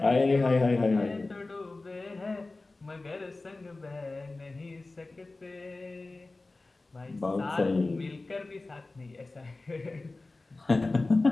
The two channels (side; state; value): right; quieter; 3.3 dB